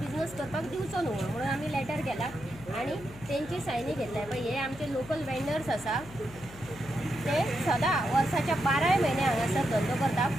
करपाक दिवचो न्हू म्हणून आमी लेटर केला आणि तेंची सायनी घेतल्या पळय हे आमचे लोकल वेंडर्स आसा ते सदां वर्साच्या 12 म्हयने हांगासर धंदो करता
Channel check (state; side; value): noise; left; hum, 17 dB below the sound